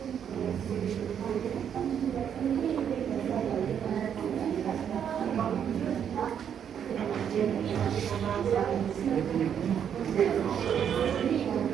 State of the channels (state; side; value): quieter; left; 8.5 dB